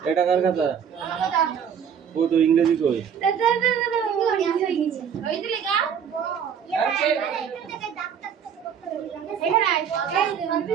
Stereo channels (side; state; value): left; quieter; 7.8 dB